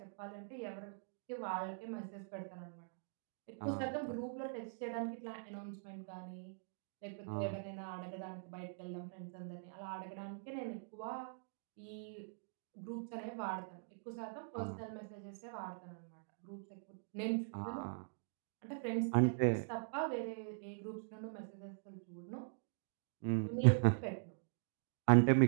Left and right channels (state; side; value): silent; left; digital silence